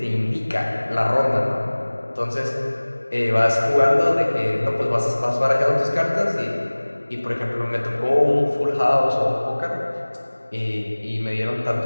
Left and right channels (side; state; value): both; inverted; correlation -1.00